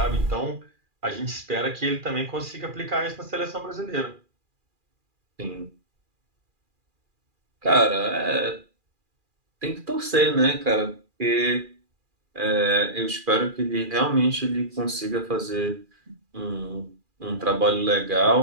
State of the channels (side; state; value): left; late; 2.4 ms